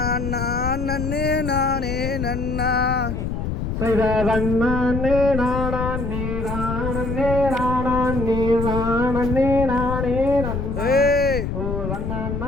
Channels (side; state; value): left; noise; rumble, 3 dB below the sound